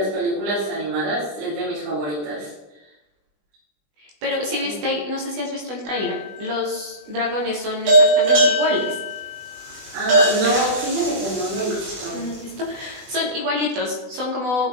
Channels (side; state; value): left; late; 20 ms